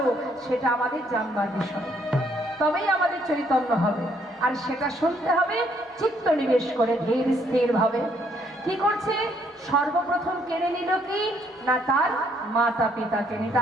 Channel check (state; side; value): normal; both; correlation 0.68